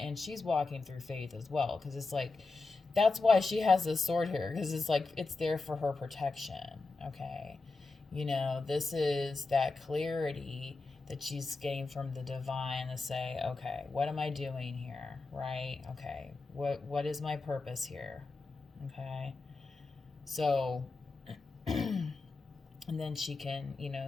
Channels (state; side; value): quieter; right; 3.7 dB